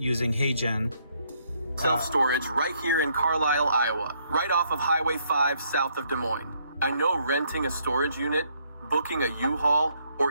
HeyGen. Self-storage right here in Carlisle, Iowa, right off of Highway 5 south of Des Moines. I know renting a storage unit, booking a U-Haul,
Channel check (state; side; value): inverted; both; correlation -0.71